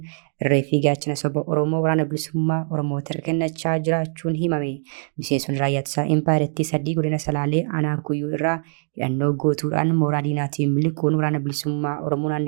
irree fi gaachana saba Oromoo waraana bilisummaa Oromoo harka kennachaa jiraachuun himame. Miseensonni raayyaa ittisaa impaayirtii 3 godina Salaalee aanaa Kuyyuu irraa hidhannoo gootuudhaan mooraa diinaatiin miliquun waraana bilisummaa Oromoo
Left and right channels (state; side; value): silent; left; digital silence